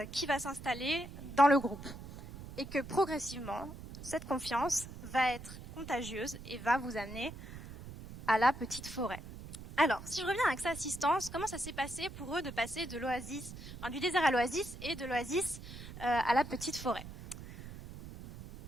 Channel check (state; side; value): noise; right; rumble, 13 dB below the sound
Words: qui va s'installer dans le groupe. Et que progressivement, cette confiance va être contagieuse et va vous amener à la petite forêt. Alors, si je reviens à Axa Assistance, comment ça s'est passé pour eux de passer de l'oasis, enfin, du désert à l'oasis et de l'oasis à la petite forêt?